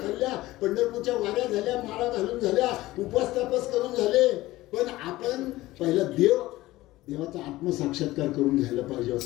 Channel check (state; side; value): quieter; right; 17.7 dB